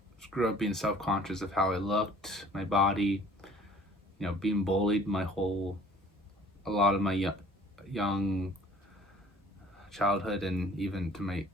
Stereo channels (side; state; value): both; normal; correlation 0.51